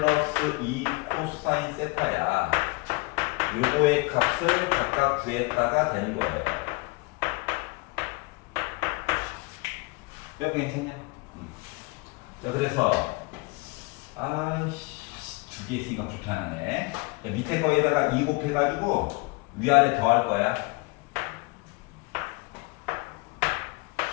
2 코사인 세타야. 요거의 값을 각각 구했다가 되는 거예요. 여기 괜찮냐? 자 그래서 두 개 있으니까 불편하네. 자, 밑에 거에다가 2 곱해가지고 위아래 더할 거야.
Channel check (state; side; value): quieter; right; 26.5 dB